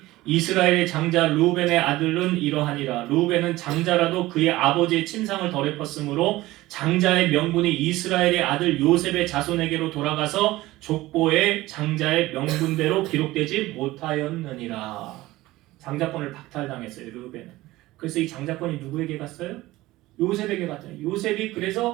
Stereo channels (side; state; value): left; quieter; 18.0 dB